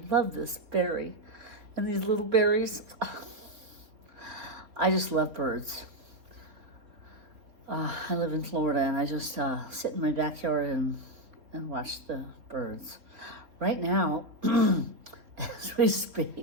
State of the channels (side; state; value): left; late; 3.7 ms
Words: love this berry. And these little berries. I just love birds. I live in Florida, and I just sit in my backyard and watch the birds. Right now, as we